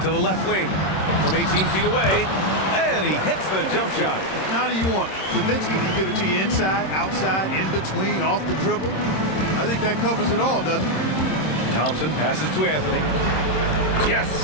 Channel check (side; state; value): right; late; 26 ms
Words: To the left wing. From 18 feet away. And he hits the jump shot. Now do you want it? Nowitzki can give it to you inside, outside, in between, off the dribble. I think that covers it all, doesn't it? Thompson passes to Anthony.